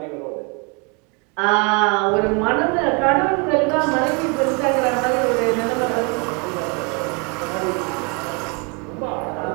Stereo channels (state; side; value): quieter; left; 32.5 dB